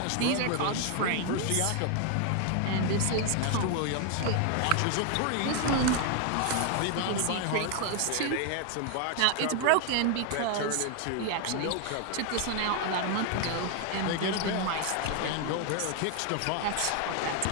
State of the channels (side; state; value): both; different; correlation 0.01